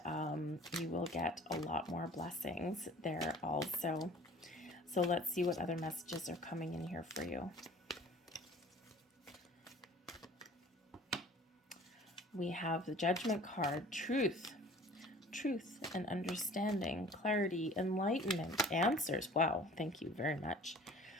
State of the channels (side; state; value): both; normal; correlation 0.47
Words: you will get a lot more blessings there also. So let's see what other messages are coming in here for you. We have the Judgment card, truth and understanding, clarity, enlightenment, answers. Wow, thank you very much.